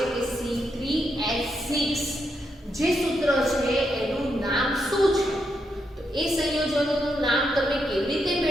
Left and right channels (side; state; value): both; normal; correlation 0.81